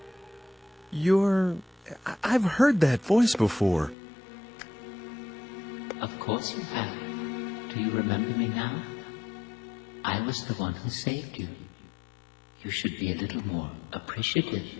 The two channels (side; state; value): right; drops out; at 4.0 s